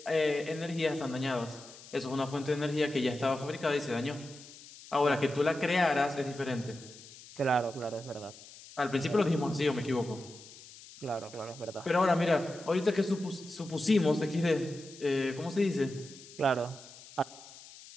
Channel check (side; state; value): left; noise; hiss, 18 dB below the sound